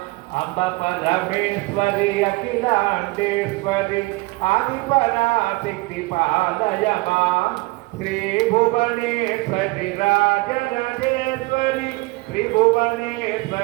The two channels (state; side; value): quieter; left; 23.0 dB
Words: అంబ పరమేశ్వరి అఖిలాండేశ్వరి ఆదిపరాశక్తి పాలయమా శ్రీ భువనేశ్వరి రాజరాజేశ్వరి